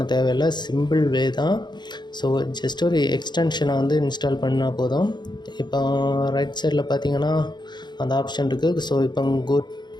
தேவையில்லை. சிம்பிள் வே தான். ஸோ ஜஸ்ட் ஒரு எக்ஸ்டென்ஷனை இன்ஸ்டால் பண்ணால் போதும். இப்போ ரைட் சைடில் பார்த்தீங்கன்னா அந்த ஆப்ஷன் இருக்குது. ஸோ இப்போ go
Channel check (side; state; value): right; late; 0.21 ms